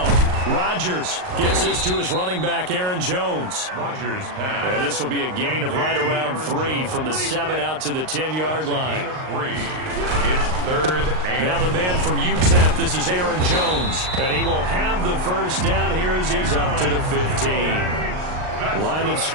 Rodgers gets this to his running back, Aaron Jones. Rodgers pass. And this will be a gain of right around 3 from the 7 out to the 10-yard line. It's third and now the man from UTEP, this is Aaron Jones. And he will have the first down here as he's up to the 15. Line of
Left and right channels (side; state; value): left; late; 38 ms